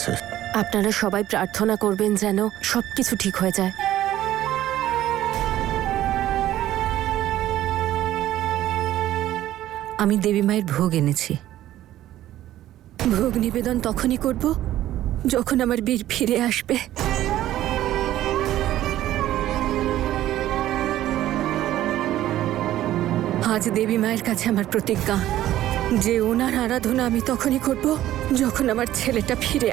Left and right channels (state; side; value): quieter; left; 13.6 dB